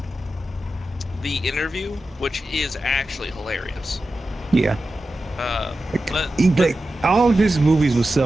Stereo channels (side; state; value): both; normal; correlation 0.92